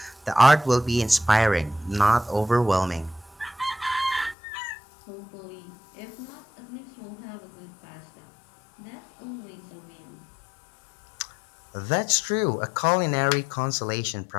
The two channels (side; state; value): right; drops out; at 4.4 s